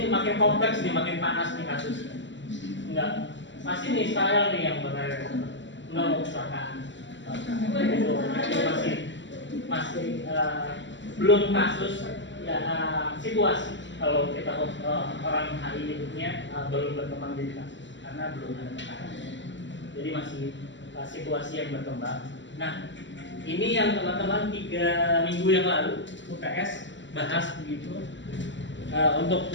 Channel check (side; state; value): right; late; 0.54 ms